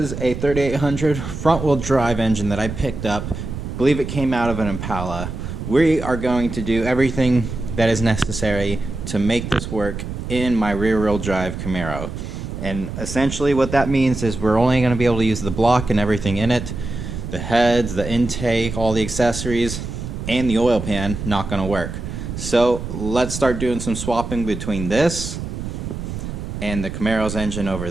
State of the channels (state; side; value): noise; right; rumble, 7 dB below the sound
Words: a 3800 front wheel drive engine that I picked up. I believe it came out of an Impala. We are going to do everything that is necessary to make this work in my rear wheel drive Camaro. And essentially what that means is we're only going to be able to use the block and everything in it. The heads, the intake, all the accessories, and the oil pan not going to work. So let's start doing some swapping between this and the Camaro's engine